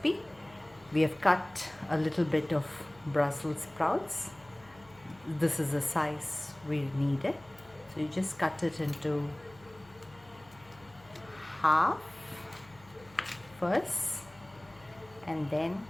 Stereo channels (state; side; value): noise; left; hum, 25 dB below the sound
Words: We have cut a little bit of Brussels sprouts. This is the size we needed. So you just cut it into half first, and then